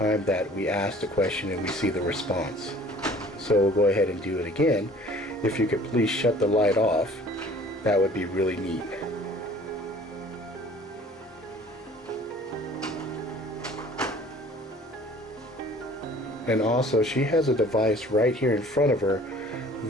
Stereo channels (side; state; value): both; normal; correlation 0.50